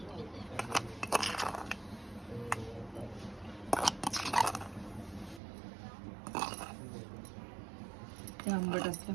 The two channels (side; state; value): left; drops out; at 5.4 s